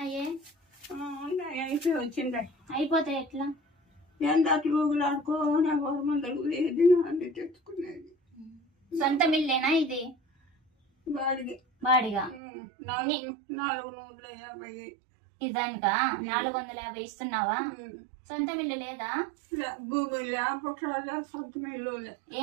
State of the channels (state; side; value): drops out; left; at 12.4 s